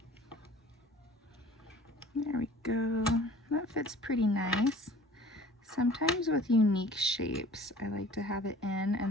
There we go. That fits pretty nice. Sometimes with unique shapes, I like to have it in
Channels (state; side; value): normal; both; correlation 0.48